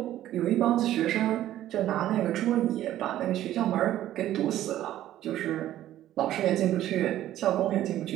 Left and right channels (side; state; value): left; quieter; 13.1 dB